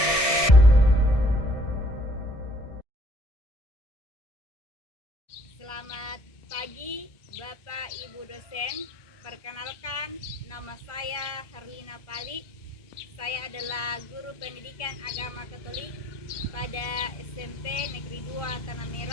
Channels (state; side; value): late; right; 1.6 ms